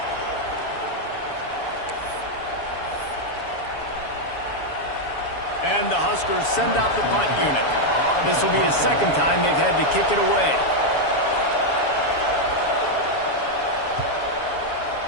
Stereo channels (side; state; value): right; late; 7.1 ms